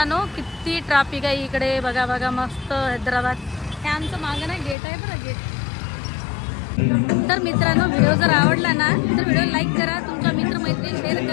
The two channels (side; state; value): right; drops out; at 4.8 s